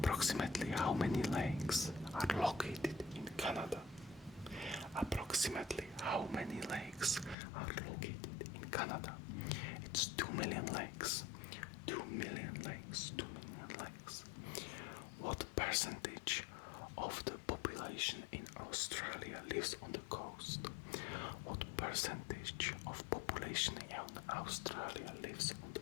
how many lakes are located in Canada? Approximately how many lakes are located in Canada? It's 2 million lakes. 2 million lakes. 2 million lakes. What percentage of the population in Australia lives on the coast? What percentage of population in Australia lives on the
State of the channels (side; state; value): right; drops out; at 7.4 s